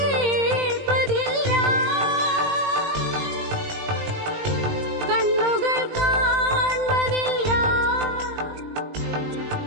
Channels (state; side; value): late; left; 20 ms